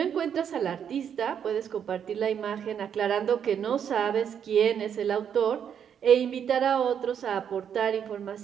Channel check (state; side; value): quieter; left; 8.3 dB